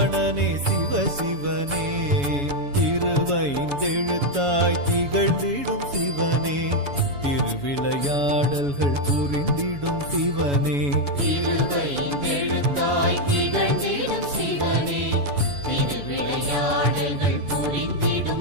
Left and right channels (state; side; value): late; left; 7.1 ms